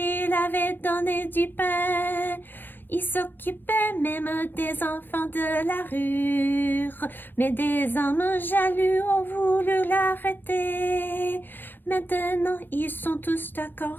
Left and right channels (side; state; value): right; late; 0.094 ms